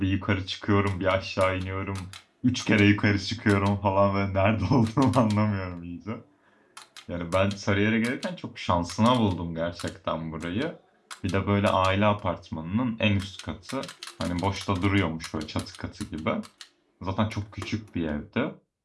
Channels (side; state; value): both; identical; correlation 1.00